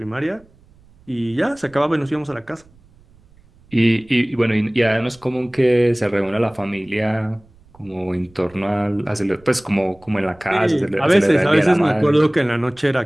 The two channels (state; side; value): noise; right; rumble, 29 dB below the sound